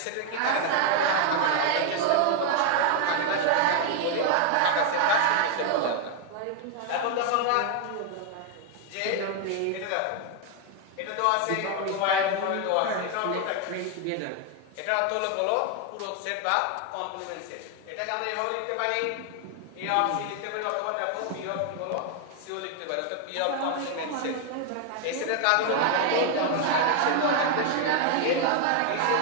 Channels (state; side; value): different; both; correlation 0.01